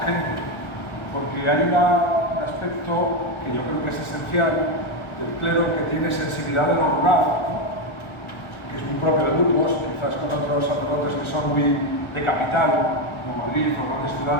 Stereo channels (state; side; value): late; right; 1.0 ms